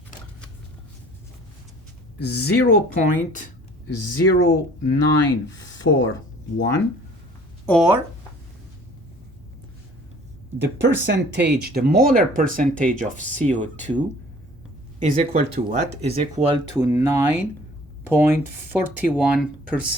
0.0941, or the percentage, the molar percentage of CO2 is equal to what? Is equal to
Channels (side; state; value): both; normal; correlation 0.52